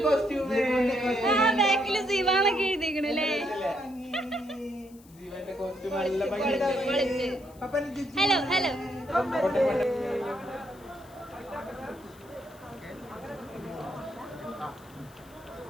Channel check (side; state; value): left; noise; hiss, 26 dB below the sound